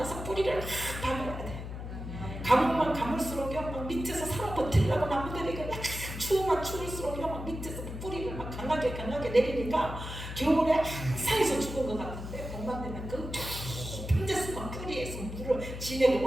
뿌리를 막 박아야 돼. 가물만 가물수록 막 밑에서 살아 버티려고 나무들이 약간 추우면 추울수록 막 밑에서 뿌리를 막 강하게 내리니까 겨울에 항상에서 죽은 것 같은데 봄만 되면 그 깊은 데서 막 뿌리에서 물을 진액을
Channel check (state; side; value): noise; left; hum, 8 dB below the sound